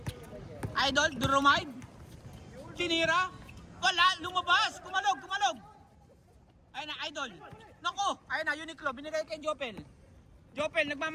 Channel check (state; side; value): identical; both; correlation 1.00